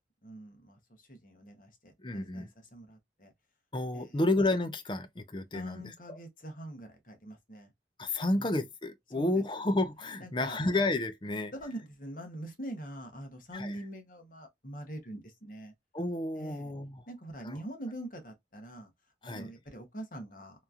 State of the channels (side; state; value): both; normal; correlation 0.63